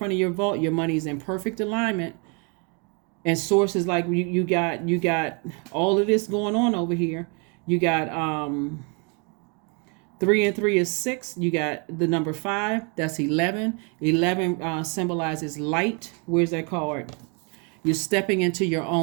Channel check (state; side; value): quieter; left; 34.7 dB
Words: of your vault. Your money's in perfect alignment. And sources you got all of this going on over here. You got 3 and 3 is 6. You got the number 5. That's 11. 11 symbolizes light. Where's that card? You're stepping into your